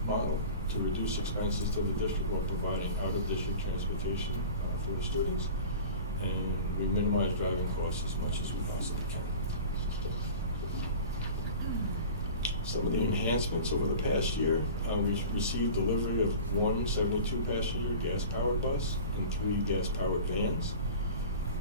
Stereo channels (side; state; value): both; inverted; correlation -0.38